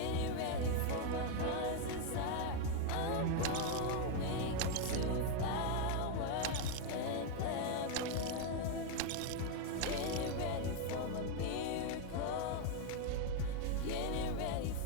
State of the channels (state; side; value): different; both; correlation 0.01